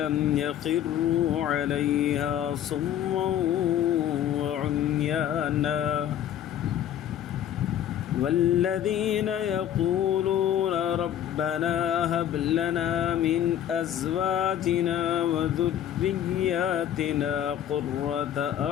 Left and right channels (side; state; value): right; quieter; 10.5 dB